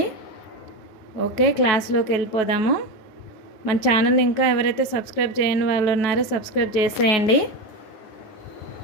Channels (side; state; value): right; late; 9.3 ms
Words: ఓకే, క్లాస్లోకి వెళ్ళిపోదాము. మన ఛానల్ ఇంకా ఎవరైతే సబ్స్క్రైబ్ చేయని వాళ్ళు ఉన్నారో సబ్స్క్రైబ్ చేసేయండి.